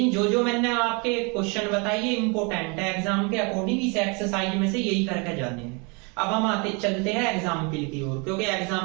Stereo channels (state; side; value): quieter; left; 31.7 dB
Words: जो मैंने आपके क्वेश्चन बताए ये इंपॉर्टेंट है, एग्जाम के अकॉर्डिंग इस एक्सरसाइज में से यही करके जाने हैं। अब हम चलते हैं एग्जाम्पल की ओर, क्योंकि